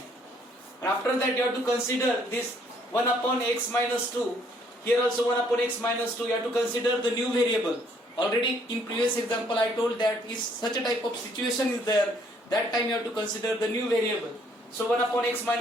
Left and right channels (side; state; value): both; normal; correlation 0.65